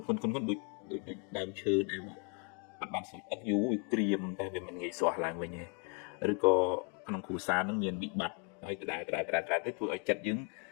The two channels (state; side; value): quieter; right; 37.9 dB